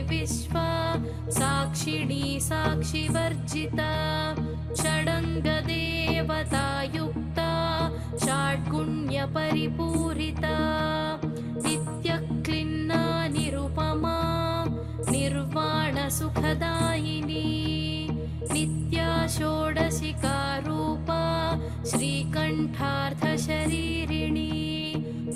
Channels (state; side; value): identical; both; correlation 1.00